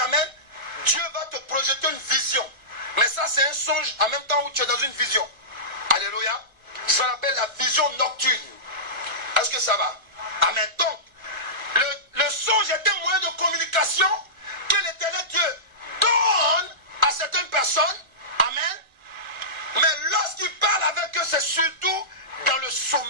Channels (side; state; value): left; late; 1.3 ms